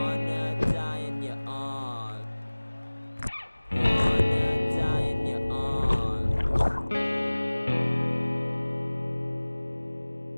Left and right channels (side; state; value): both; inverted; correlation -1.00